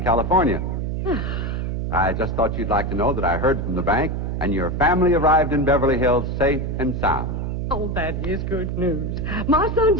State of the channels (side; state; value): right; noise; hum, 2 dB below the sound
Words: California. I just thought you'd like to know that I heard from the bank, and your family arrived in Beverly Hills safe and sound. Oh, that is good news. My son